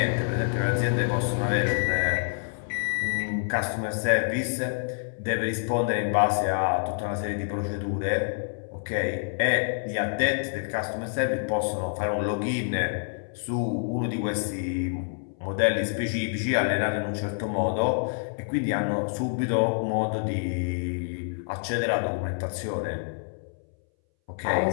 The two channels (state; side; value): silent; right; 60 dB below the other